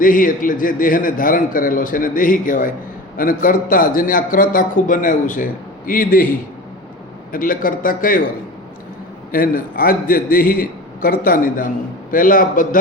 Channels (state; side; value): normal; both; correlation 0.33